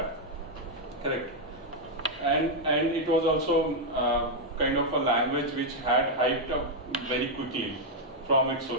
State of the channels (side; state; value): both; normal; correlation -0.01